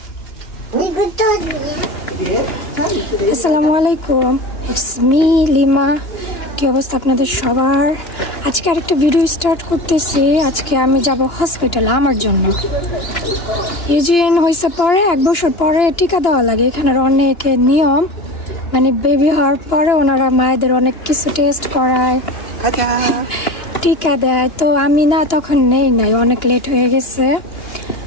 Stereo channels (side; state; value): right; late; 2.9 ms